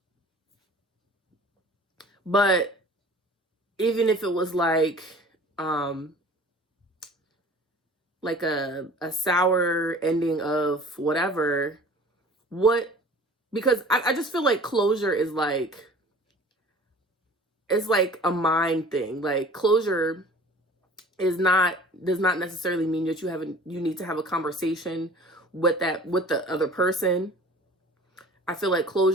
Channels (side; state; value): both; normal; correlation 0.45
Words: But even if it was like a sour ending of whatever, because I just feel like closure is like, it's like a mind thing. Like, closure does not necessarily mean that you need to have a conversation with the other person. I feel like